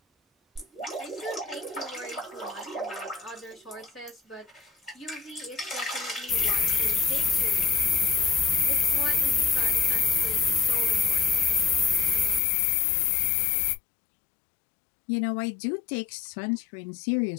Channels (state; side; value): drops out; right; at 12.4 s